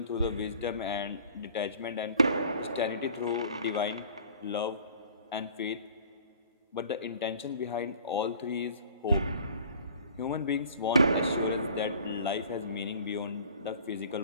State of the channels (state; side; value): inverted; both; correlation -0.49